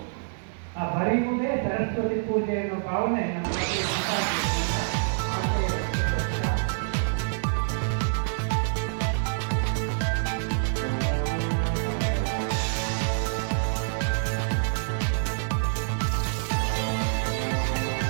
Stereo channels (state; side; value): silent; left; digital silence